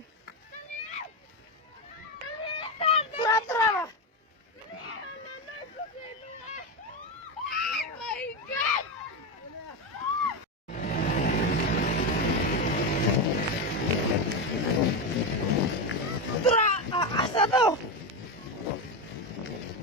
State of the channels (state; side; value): normal; both; correlation 0.13